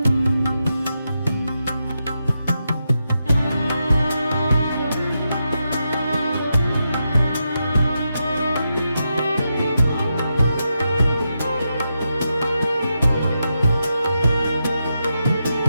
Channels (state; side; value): inverted; both; correlation -0.86